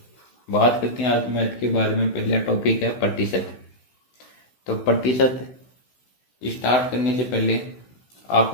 बात करते हैं आज मैथ के बारे में। पहला टॉपिक है प्रतिशत। तो प्रतिशत स्टार्ट करने से पहले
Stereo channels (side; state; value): right; late; 16 ms